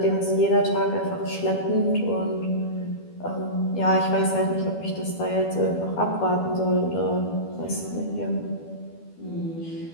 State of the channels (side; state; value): right; late; 12 ms